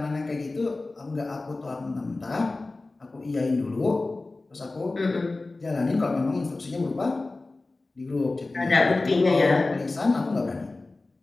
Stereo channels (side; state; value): right; quieter; 3.2 dB